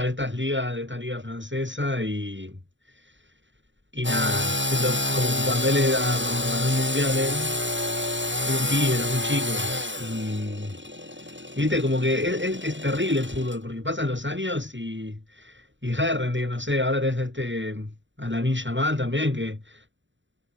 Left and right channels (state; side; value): late; left; 0.54 ms